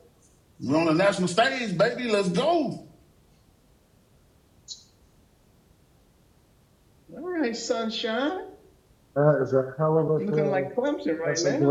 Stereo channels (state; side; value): identical; both; correlation 1.00